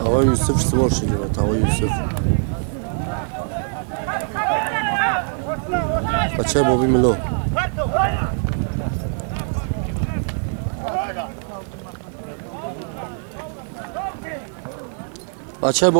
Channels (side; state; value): left; silent; 57 dB below the other